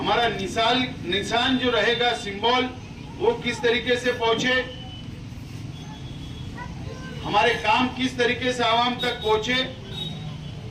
निशान जो रहेगा, सिंबल, वो किस तरीके से पहुंचे, हमारे काम किस तरीके से आवाम तक पहुंचे,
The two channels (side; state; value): both; identical; correlation 1.00